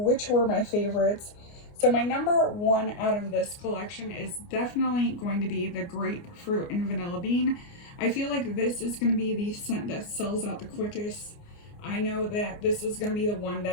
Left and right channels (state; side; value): late; right; 29 ms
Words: were my favorites. So my number 1 out of this collection is definitely going to be the grapefruit and vanilla bean. I feel like this is going to be the scent that sells out the quickest. I know that this is going to be the one